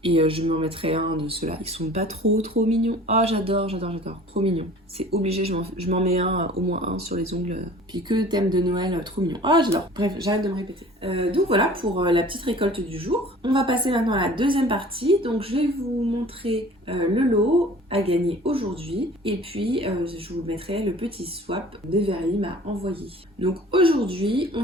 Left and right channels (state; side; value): normal; both; correlation 0.47